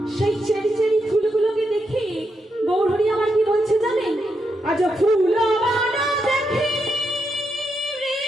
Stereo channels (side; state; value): both; normal; correlation 0.83